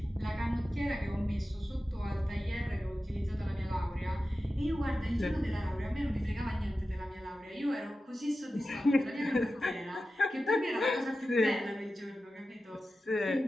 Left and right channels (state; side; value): normal; both; correlation 0.93